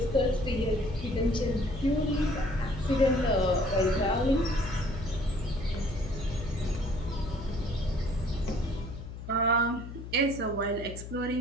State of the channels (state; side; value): noise; left; hum, 10 dB below the sound